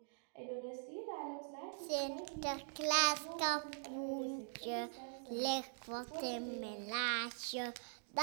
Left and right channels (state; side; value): silent; left; digital silence